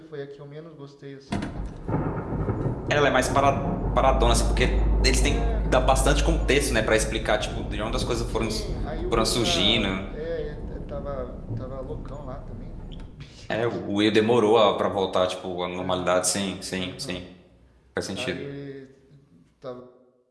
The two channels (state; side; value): identical; both; correlation 1.00